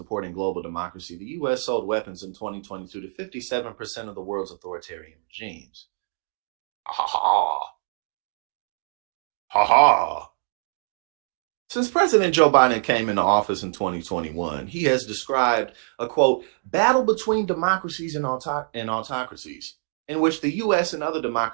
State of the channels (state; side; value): silent; left; digital silence